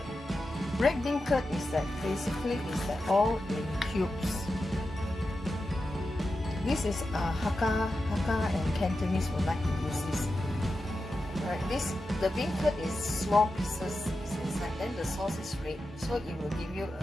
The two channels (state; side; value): normal; both; correlation 0.91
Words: Red bean curd is that basically is that all in cubes. This is Hakka and Cantonese would like to use this. Right, the bean curd is small pieces inside, then the sauce is red, so it will give you